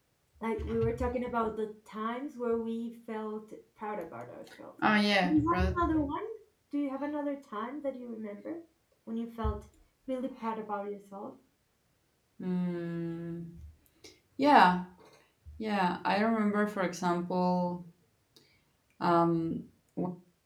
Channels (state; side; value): identical; both; correlation 1.00